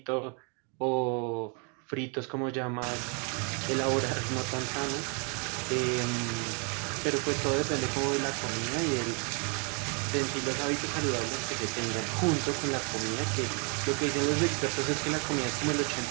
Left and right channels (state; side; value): quieter; left; 36.4 dB